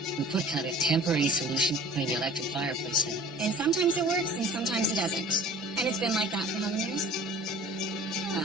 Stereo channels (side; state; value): both; normal; correlation 0.45